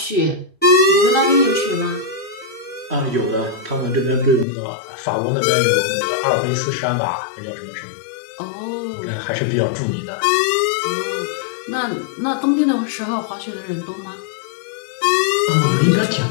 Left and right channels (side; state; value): right; drops out; at 4.5 s